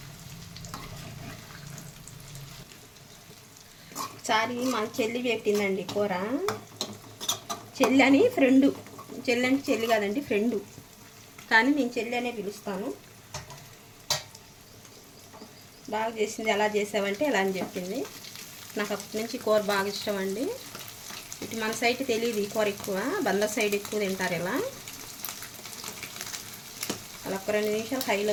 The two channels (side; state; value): both; identical; correlation 1.00